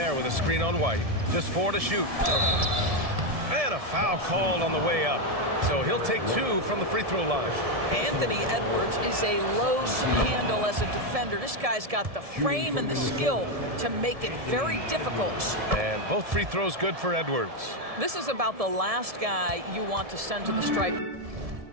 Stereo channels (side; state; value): left; late; 1.7 ms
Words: with a screen on White. Just 4 to shoot. And a foul called on the way up. So he'll take 2 from the free throw line. Anthony Edwards is a load to handle as a defender. This guy's got the frame and the skill to make it very difficult. And both free throws good for Edwards. This is about the last guy you want to send to the stripe.